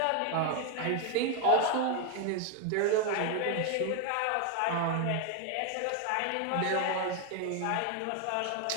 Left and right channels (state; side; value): different; both; correlation 0.01